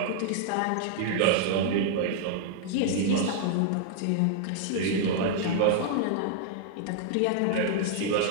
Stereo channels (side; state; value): both; different; correlation -0.01